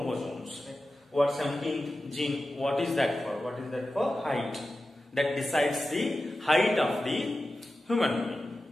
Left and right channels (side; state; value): both; normal; correlation 0.93